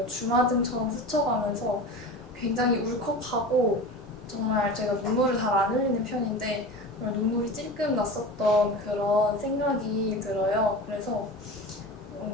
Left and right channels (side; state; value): both; normal; correlation 0.32